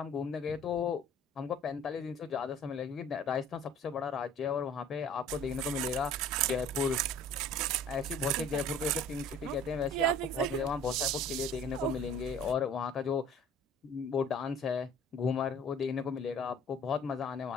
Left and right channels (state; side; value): normal; both; correlation 0.49